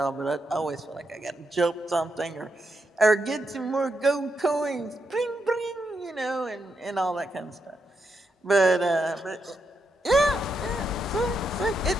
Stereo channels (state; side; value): normal; both; correlation 0.82